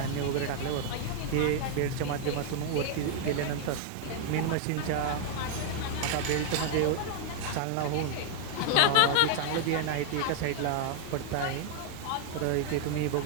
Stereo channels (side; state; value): both; different; correlation 0.00